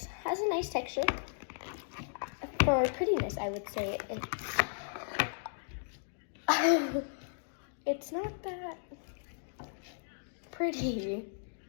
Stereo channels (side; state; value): right; silent; digital silence